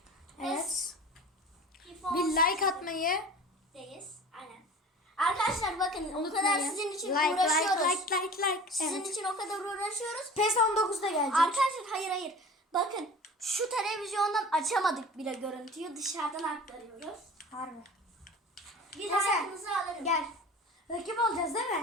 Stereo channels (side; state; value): both; normal; correlation 0.39